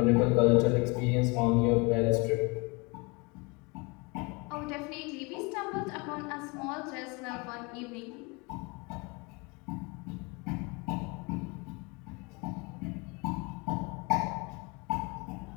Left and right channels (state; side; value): quieter; right; 27.8 dB